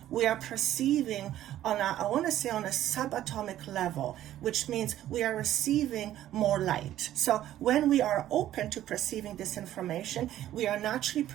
we are perceiving on a, I want to say on a subatomic level, which means we are receiving more light. So when we are open to perceiving this information, we are naturally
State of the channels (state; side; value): quieter; left; 12.8 dB